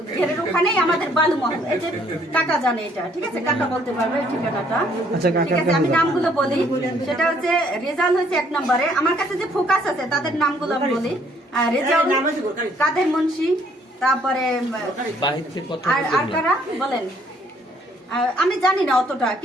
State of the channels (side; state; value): both; normal; correlation 0.65